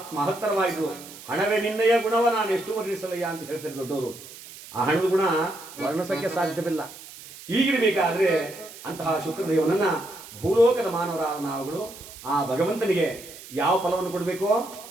ಮಹತ್ತರವಾಯಿತು. ಹಣವೇ ನಿನ್ನಯ ಗುಣವ ನಾನು ಎಷ್ಟು ವರ್ಣಿಸಲಯ್ಯ ಅಂತ ಹೇಳ್ತಾರೆ ದೊಡ್ಡವರು. ಆ ಹಣದ ಗುಣ ವರ್ಣಿಸಕ್ಕೆ ಸಾಧ್ಯವಿಲ್ಲ. ಹೀಗಿರಬೇಕಾದ್ರೆ ಅಂತಹ ಶುಕ್ರದೇವನನ್ನ ಭೂಲೋಕದ ಮಾನವರಾದ ನಾವುಗಳು ಆ ಭಗವಂತನಿಗೆ ಯಾವ ಫಲವನ್ನು ಕೊಡಬೇಕೋ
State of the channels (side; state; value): right; noise; hiss, 16 dB below the sound